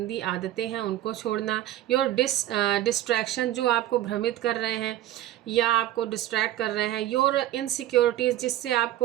आदतें हैं उनको छोड़ना। योर डिस्ट्रैक्शन, जो आपको भ्रमित कर रहे हैं या आपको डिस्ट्रैक्ट कर रहे हैं। योर इनसिक्योरिटीज़, जिससे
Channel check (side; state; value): left; quieter; 13.4 dB